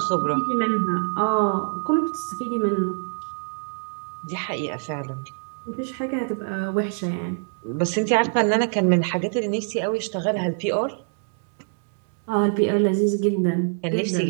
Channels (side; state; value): left; silent; 62 dB below the other